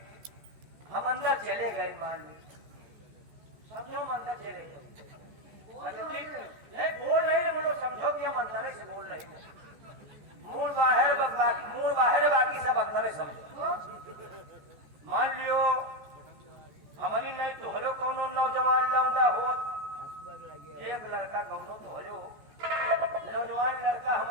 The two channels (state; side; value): late; left; 14 ms